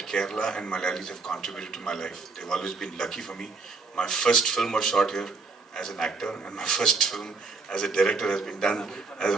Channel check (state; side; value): quieter; left; 4.1 dB